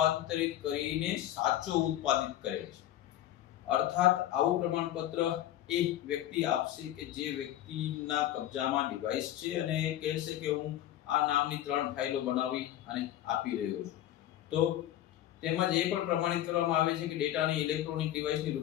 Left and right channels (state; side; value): quieter; right; 12.9 dB